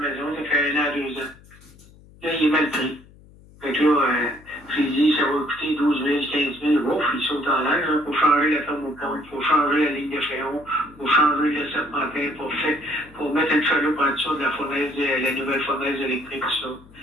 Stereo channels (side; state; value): left; noise; hum, 24 dB below the sound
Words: ça fait 1 an, 2 ans. Là, il est mal pris. Fait que là, j'ai dit, ça va coûter 12 000, 15 000. Ouf, il saute en l'air. Il faut changer la thermopompe, il faut changer la ligne de fréon, il faut changer le serpentin pour mettre une chaloupe en dessous de la fournaise, la nouvelle fournaise électrique, tout ça.